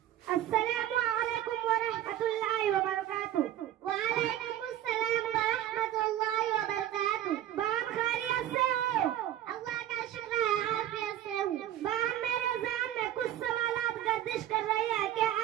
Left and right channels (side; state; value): left; quieter; 12.4 dB